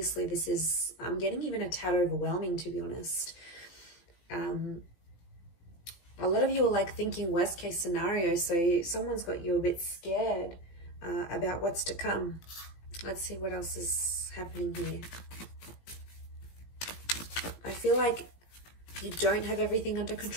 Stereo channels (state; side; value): late; right; 18 ms